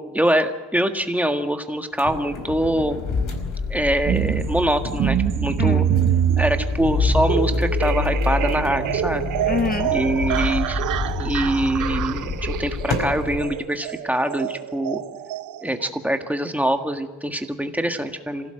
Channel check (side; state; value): both; normal; correlation 0.66